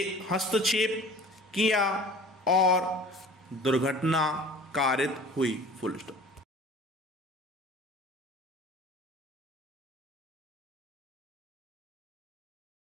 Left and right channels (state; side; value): normal; both; correlation 0.44